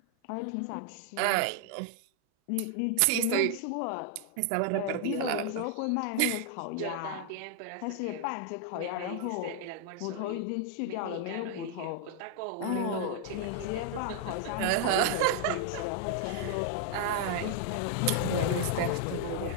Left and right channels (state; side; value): different; both; correlation 0.00